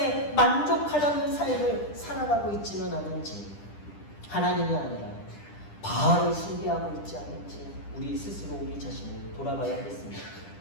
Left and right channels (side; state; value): right; late; 10 ms